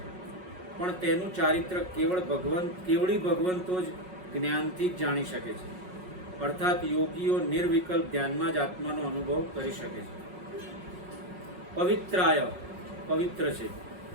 પણ તેનું ચારિત્ર કેવળી ભગવંતો જ જ્ઞાનથી જ જાણી શકે છે. અર્થાત યોગીઓ નિર્વિકલ્પ ધ્યાનમાં જ આત્માનો અનુભવ કરી શકે છે. પવિત્રાય, પવિત્ર છે.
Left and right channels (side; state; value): left; late; 5.5 ms